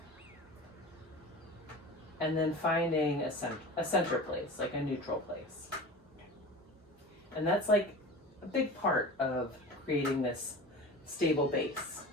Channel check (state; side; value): normal; both; correlation 0.34